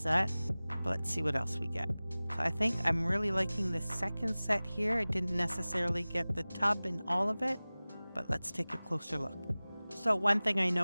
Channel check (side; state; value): both; inverted; correlation -0.99